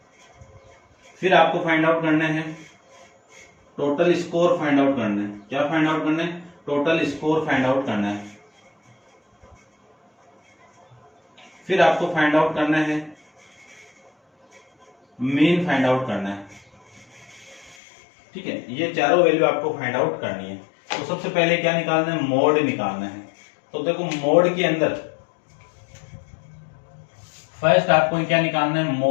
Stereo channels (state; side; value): drops out; right; at 17.8 s